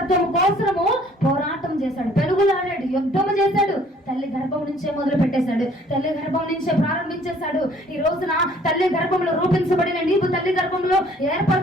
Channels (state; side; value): normal; both; correlation 0.58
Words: కోసము పోరాటం చేశాడు, పెనుగులాడాడు, యుద్ధము చేశాడు. తల్లి గర్భం నుంచే మొదలు పెట్టేశాడు, తల్లి గర్భం నుంచే ప్రారంభించేశాడు. ఈ రోజున తల్లి గర్భంలో రూపించబడిన నీవు, తల్లి గర్భంలో